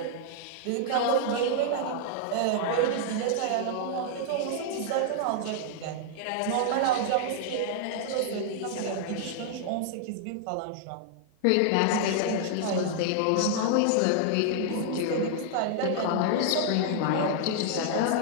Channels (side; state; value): both; different; correlation -0.01